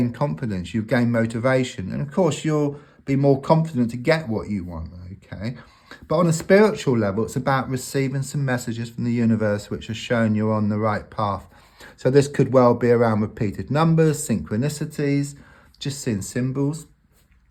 confidence, you'll gain motivation, and of course you'll be more confident to get what you want, okay? But on a spiritual level, it's about receiving some messages from the universe which are showing you're on the right path. So this could well be around repeated numbers, synchronicities, just seeing symbols.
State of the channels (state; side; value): identical; both; correlation 1.00